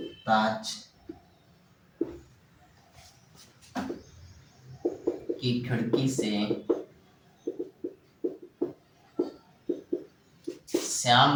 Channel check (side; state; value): both; identical; correlation 1.00